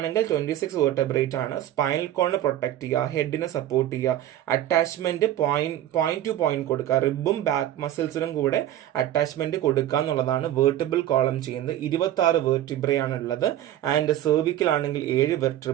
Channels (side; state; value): left; quieter; 12.4 dB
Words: 26 വെർട്ടബ്രേറ്റ് ആണ്. സ്പൈനൽ കോളിനെ പ്രൊട്ടക്ട് ചെയ്യുക, ഹെഡിനെ സപ്പോർട്ട് ചെയ്യുക, അറ്റാച്ച്മെന്റ് പോയിന്റ് ടു പോയിന്റ് കൊടുക്കുക, റിബും ബാക്ക് മസിൽസിനും കൂടെ അറ്റാച്ച്മെന്റ് കൊടുക്കുക എന്നുള്ളതാണ് വെർട്ടിബിൾ കോളം ചെയ്യുന്നത്. 26 വെർട്ടിബ്രേ ആണ് ഉള്ളത്. ആൻഡ് സെർവിക്കൽ ആണെങ്കിൽ 7